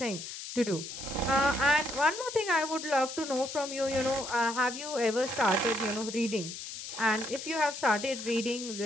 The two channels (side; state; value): left; noise; hiss, 9 dB below the sound